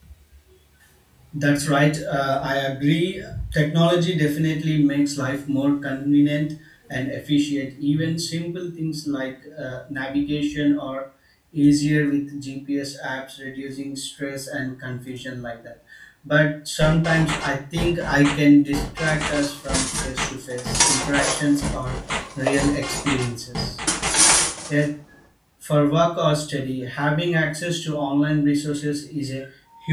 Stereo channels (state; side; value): identical; both; correlation 1.00